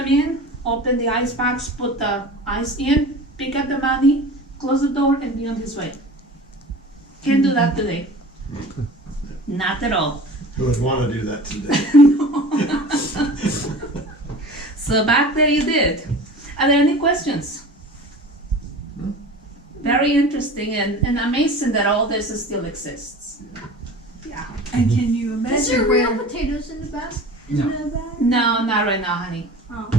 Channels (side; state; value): both; normal; correlation 0.38